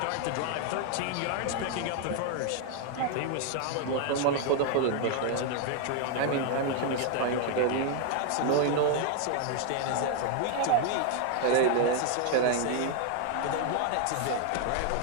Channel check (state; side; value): different; both; correlation 0.00